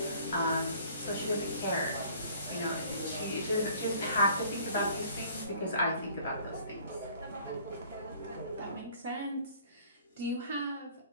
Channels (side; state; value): both; inverted; correlation -0.54